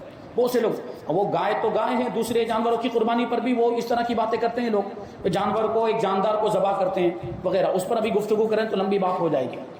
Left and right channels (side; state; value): both; identical; correlation 1.00